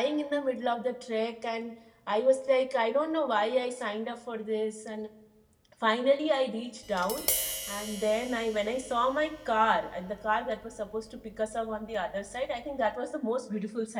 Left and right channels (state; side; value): identical; both; correlation 1.00